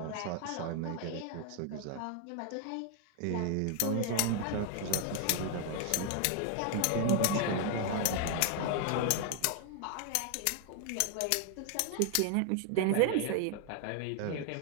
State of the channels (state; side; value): different; both; correlation 0.00